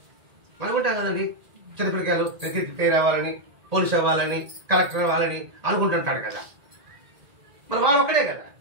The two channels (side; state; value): left; late; 1.8 ms